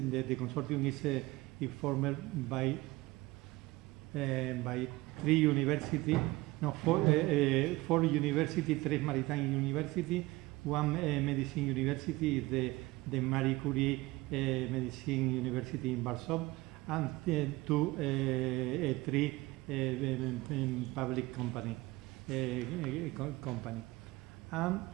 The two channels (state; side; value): quieter; left; 20.5 dB